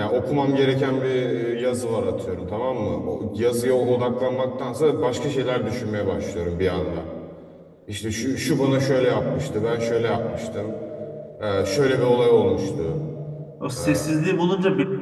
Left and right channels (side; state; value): both; identical; correlation 1.00